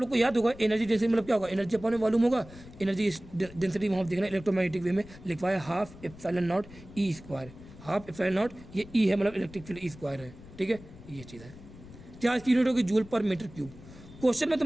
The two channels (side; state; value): left; noise; rumble, 18 dB below the sound